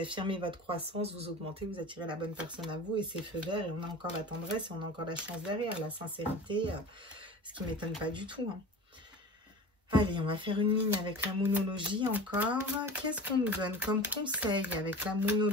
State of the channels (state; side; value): normal; both; correlation 0.36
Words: votre croissance, vous augmentez, vous attirez la bonne personne à vous et c'est feu vert et on a encore la tendresse et on a encore la chance derrière, la sincérité, ce qui ne m'étonne pas du tout. Hein. Allez, on va faire une ligne avec la moonologie encore. Qu'est-ce qu'on nous donne comme conseil avec la